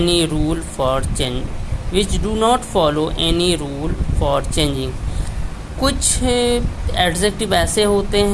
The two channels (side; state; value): both; identical; correlation 1.00